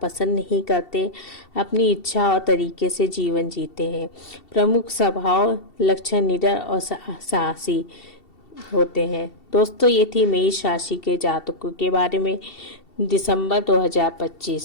पसंद नहीं करते, अपनी इच्छा और तरीके से जीवन जीते हैं। प्रमुख स्वभाव लक्षण निडर और साहसी होते हैं। दोस्तों, ये थी मेष राशि के जातकों के बारे में दिसंबर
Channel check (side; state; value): right; late; 2.7 ms